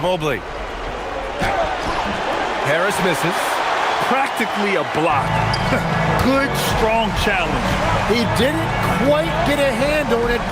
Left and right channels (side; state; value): both; identical; correlation 1.00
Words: Mobley. Harris misses. Practically a block. Good, strong challenge. He didn't quite get a hand on it,